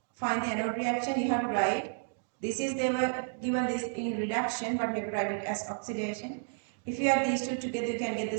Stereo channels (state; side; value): silent; left; digital silence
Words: Find the anode reaction, you have to write. This is, they were given this in reduction, but you have to write it as oxidation. If you add these two together, you can get the